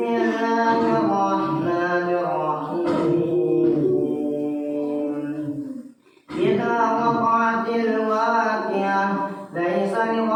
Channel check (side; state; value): both; identical; correlation 1.00